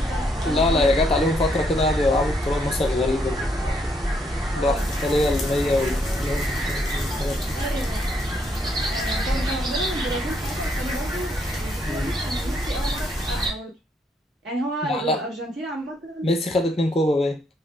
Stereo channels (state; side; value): normal; both; correlation 0.73